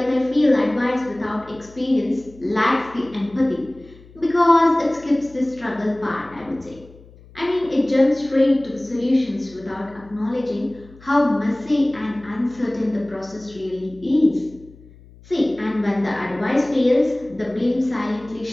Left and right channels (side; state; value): left; noise; hum, 23 dB below the sound